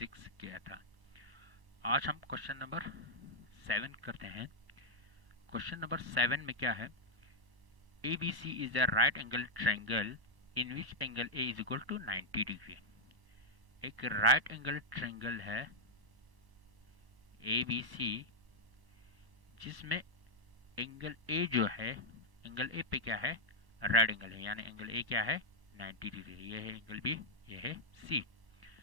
किया था। आज हम क्वेश्चन नंबर 7 करते हैं। क्वेश्चन नंबर 7 में क्या है? ABC is a right angle triangle in which angle A is equal to 90 degree. एक राइट एंगल ट्रायंगल है ABC जिसमें एंगल ए जो है, एंगल ए पे क्या है? राइट एंगल है, यानी एंगल ए क्या है? 90 डिग्री। ये है एंगल बी, ये है सी।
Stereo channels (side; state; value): left; late; 1.1 ms